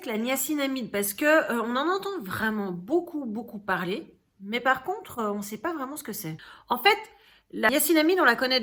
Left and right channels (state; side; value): identical; both; correlation 1.00